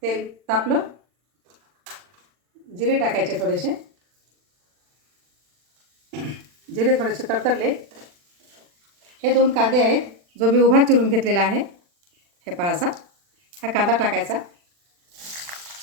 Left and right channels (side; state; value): left; late; 40 ms